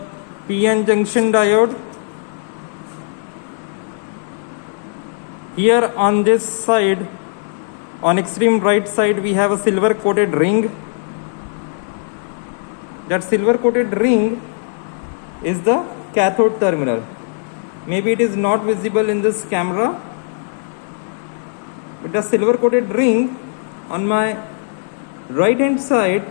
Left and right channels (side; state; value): right; silent; 65 dB below the other